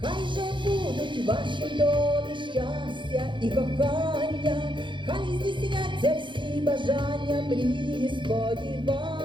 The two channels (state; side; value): late; left; 0.23 ms